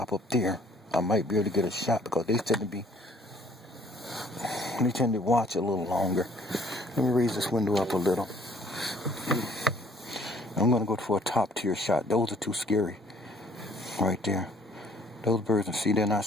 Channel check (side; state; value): both; normal; correlation 0.59